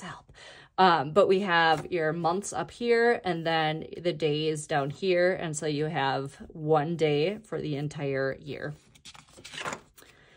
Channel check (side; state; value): both; identical; correlation 1.00